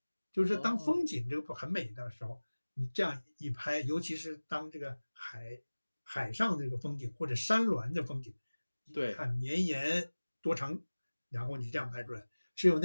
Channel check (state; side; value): inverted; both; correlation -1.00